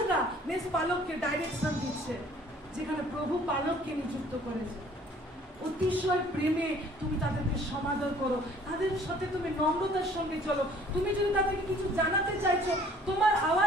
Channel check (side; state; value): both; normal; correlation 0.55